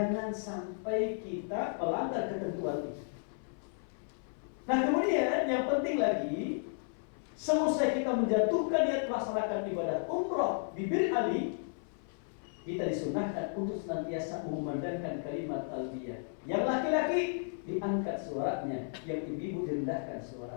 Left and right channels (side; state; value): right; silent; 55 dB below the other